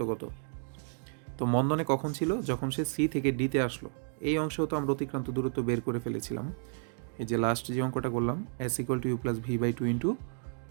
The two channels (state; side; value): silent; left; 57 dB below the other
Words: কত? তো মন্দনে কখন ছিল? যখন সে সি থেকে ডিতে আসলো। এই অংশেও তো আমরা অতিক্রান্ত দূরত্ব বের করে ফেলেছিলাম, এই যে লাস্ট যে অঙ্কটা করলাম S = U + V/2 ×